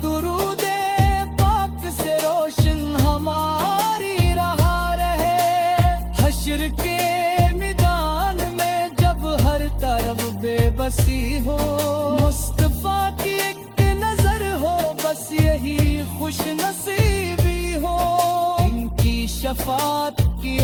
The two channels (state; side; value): identical; both; correlation 1.00